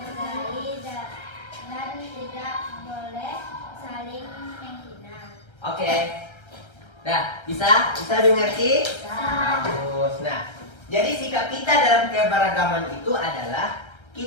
dan tidak boleh saling menghina. Bisa? Bisa dimengerti? Bisa. Bagus. Nah, jadi sikap kita dalam keberagaman itu adalah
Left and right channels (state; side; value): late; right; 1.3 ms